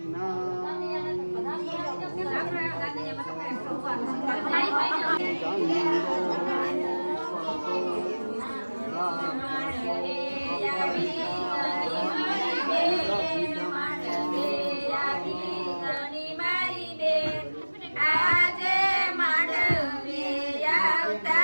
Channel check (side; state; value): both; inverted; correlation -1.00